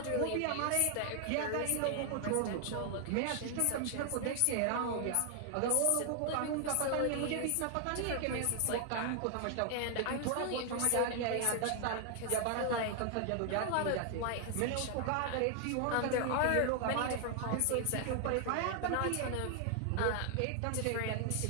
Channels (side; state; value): both; different; correlation 0.00